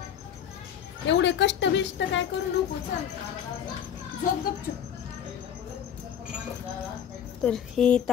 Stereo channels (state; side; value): quieter; right; 8.9 dB